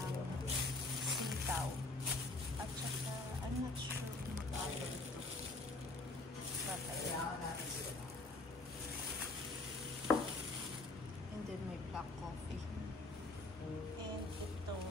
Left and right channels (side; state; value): right; quieter; 3.1 dB